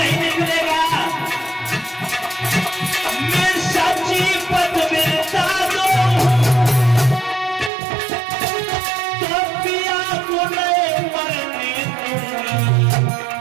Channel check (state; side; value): drops out; left; at 7.7 s